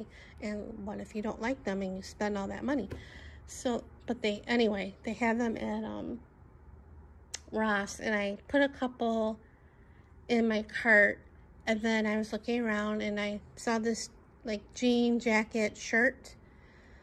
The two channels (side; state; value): both; identical; correlation 1.00